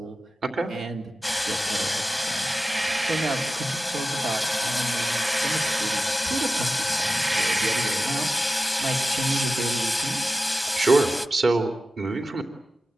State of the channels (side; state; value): both; normal; correlation 0.94